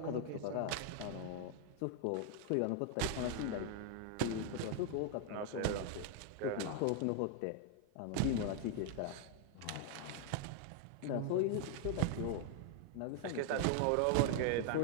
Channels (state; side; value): different; both; correlation 0.00